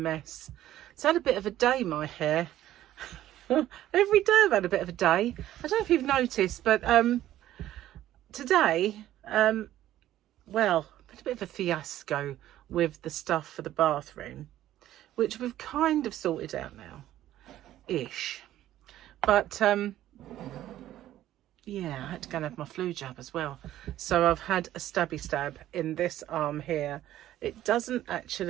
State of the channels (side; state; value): left; quieter; 13.3 dB